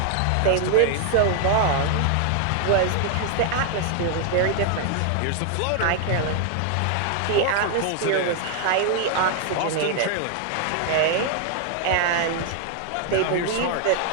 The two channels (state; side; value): different; both; correlation 0.00